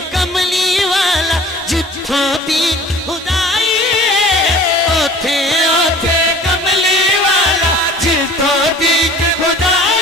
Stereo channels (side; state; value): both; normal; correlation 0.46